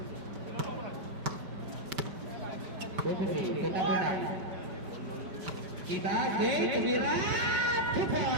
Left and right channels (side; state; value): left; late; 5.4 ms